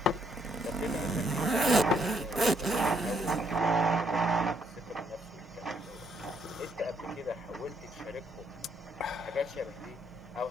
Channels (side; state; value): both; normal; correlation 0.72